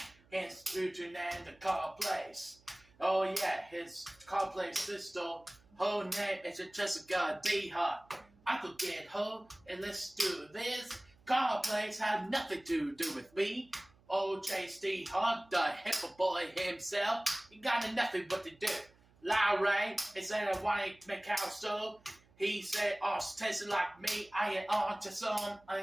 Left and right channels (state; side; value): noise; right; hum, 30 dB below the sound